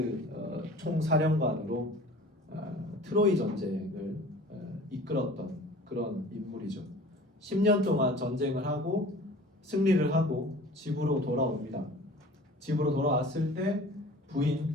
총사령관으로 트로이 전쟁을 이끌었던 그런 인물이죠. 10년 동안 전쟁을 하고 승리를 하고 집으로 돌아옵니다. 집으로 돌아왔을 때 부인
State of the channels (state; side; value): normal; both; correlation 0.44